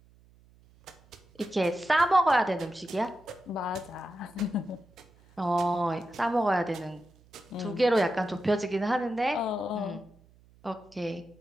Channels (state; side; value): noise; right; hum, 28 dB below the sound